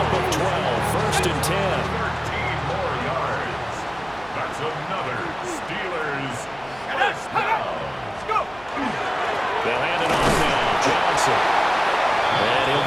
of 12. 1st and 10. 13 more yards. That's another Steelers first down. Let's go. They'll hand it off now. Johnson. And he'll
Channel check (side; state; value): right; noise; hum, 22 dB below the sound